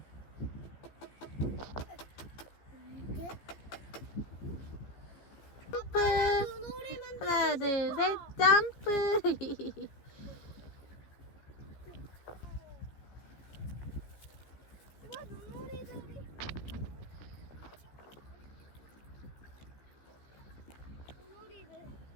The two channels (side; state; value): right; late; 15 ms